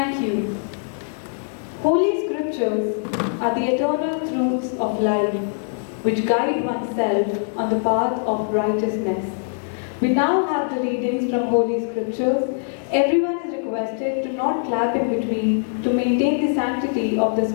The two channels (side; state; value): right; silent; digital silence